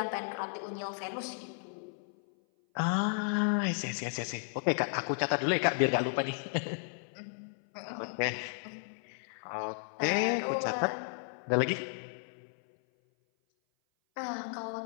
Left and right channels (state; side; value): silent; right; 55 dB below the other